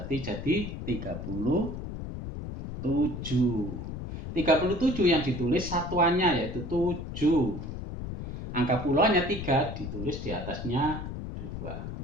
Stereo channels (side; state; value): left; noise; rumble, 7 dB below the sound